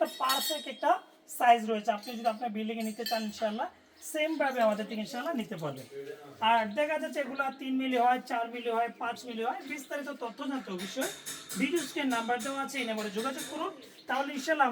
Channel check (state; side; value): identical; both; correlation 1.00